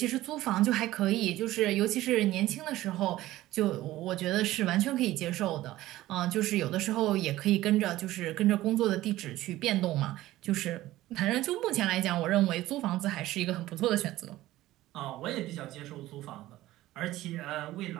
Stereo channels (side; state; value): left; quieter; 16.0 dB